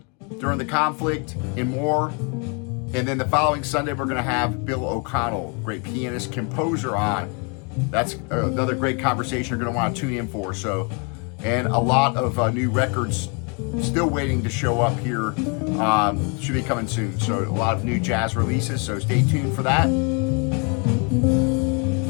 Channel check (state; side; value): quieter; right; 34.8 dB